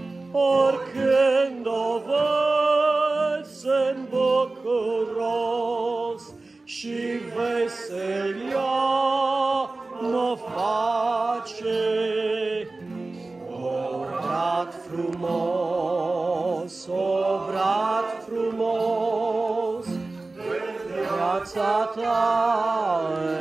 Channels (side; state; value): left; quieter; 3.3 dB